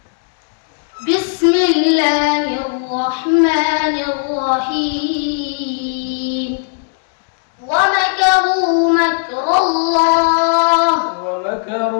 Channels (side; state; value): right; silent; digital silence